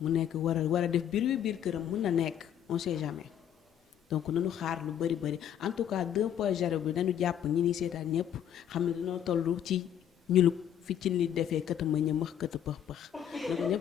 mu nekk war a def biir këram mun na nekk on sait jamais. donc nañu xaar lu bëri en tout cas 2.0 bi nañu jàpp ñi ni seetaan ñëpp xam ne dañoo toll ci ñulub fi ci li defee këta ma ñëmax këta pëx na ko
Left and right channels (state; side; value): quieter; right; 9.8 dB